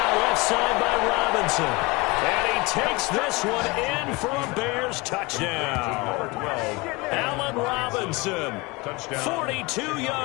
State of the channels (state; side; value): quieter; right; 25.0 dB